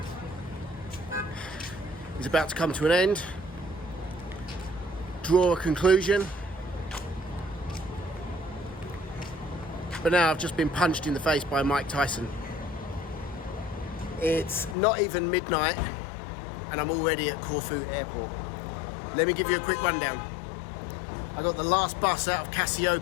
is about to come to an end. Draw a conclusion. But now I've just been punched in the face by Mike Tyson. It's not even midnight and I'm already at Corfu airport. Let me give you a quick rundown. I got the last bus out of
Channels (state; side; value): drops out; right; at 14.8 s